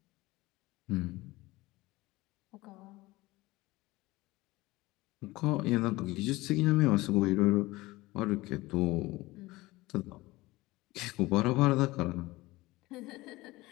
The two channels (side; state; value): right; quieter; 20.0 dB